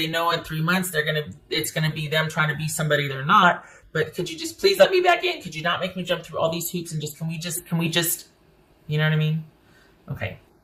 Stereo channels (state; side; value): identical; both; correlation 1.00